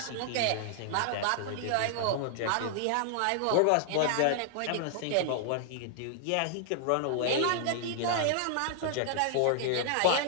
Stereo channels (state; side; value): different; both; correlation 0.00